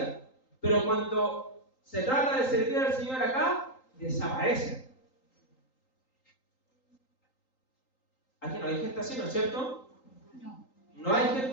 Pero cuando se trata de servir al Señor acá, desaparecen. Aquí no hay gente así, ¿no es cierto? No hay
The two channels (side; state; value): right; late; 3.8 ms